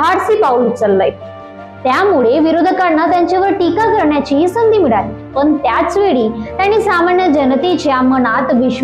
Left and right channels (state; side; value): identical; both; correlation 1.00